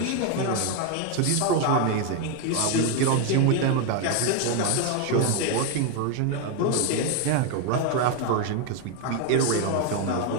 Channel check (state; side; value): different; both; correlation 0.01